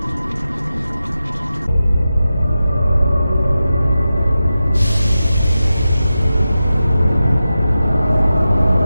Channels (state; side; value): inverted; both; correlation -0.92